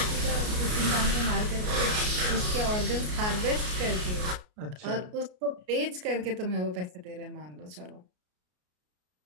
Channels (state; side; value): late; left; 33 ms